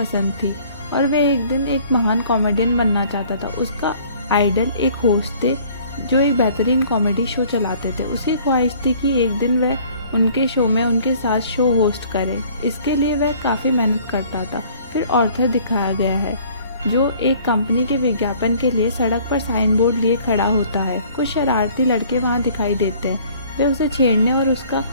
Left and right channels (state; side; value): inverted; both; correlation -0.54